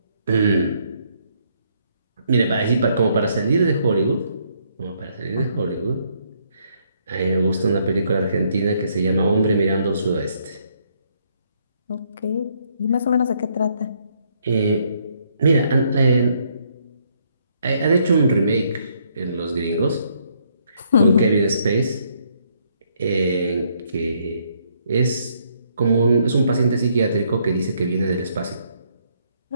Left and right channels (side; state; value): both; inverted; correlation -0.71